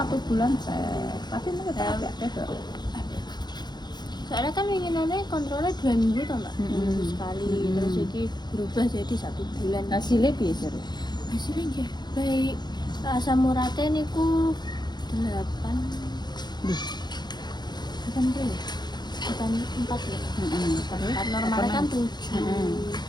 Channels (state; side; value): late; right; 0.21 ms